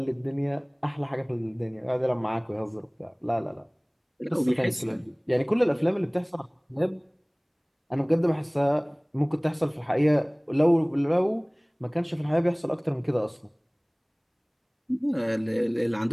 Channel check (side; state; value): both; identical; correlation 1.00